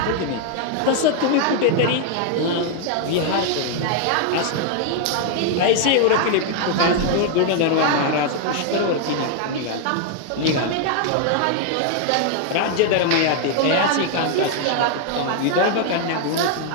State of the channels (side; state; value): both; different; correlation 0.00